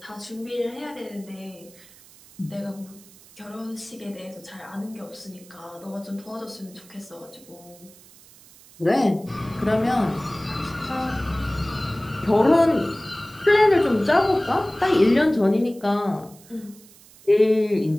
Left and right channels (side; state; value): right; noise; hiss, 24 dB below the sound